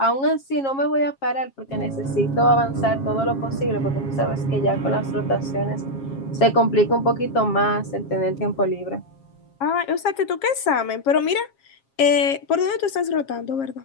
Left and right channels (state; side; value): late; right; 7.4 ms